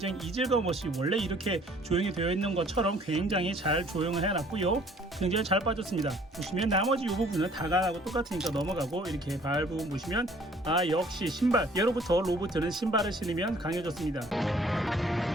이질감 없이 원래 이렇게 조용히 되어 있는 것처럼 굉장히 잘 조용을 해놨고요. 굉장히 잘 빠졌습니다. 보시면 나머지 이 부분은 다간하고 똑같으니까 넘어가고 이렇게 발 부분 보시면 역시 신발 예로부터 로봇은 신발을 신으면 강해졌습니다.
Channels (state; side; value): normal; both; correlation 0.57